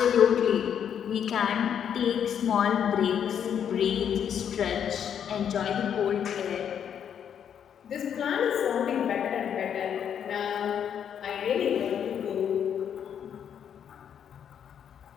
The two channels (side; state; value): right; quieter; 8.6 dB